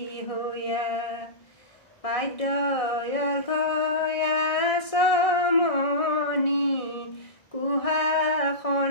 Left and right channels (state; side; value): late; right; 1.6 ms